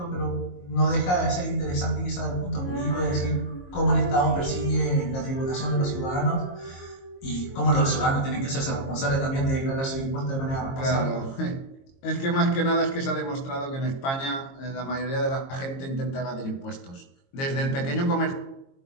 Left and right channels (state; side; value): late; right; 22 ms